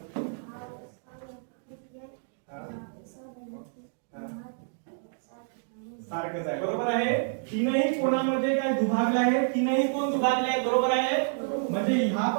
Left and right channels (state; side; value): silent; left; 59 dB below the other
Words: सारखंच आहे. बरोबर आहे. तीनही कोणामध्ये काय दुभागले आहे, तीनही कोण दुभागले आहेत. बरोबर आहे. म्हणजे हा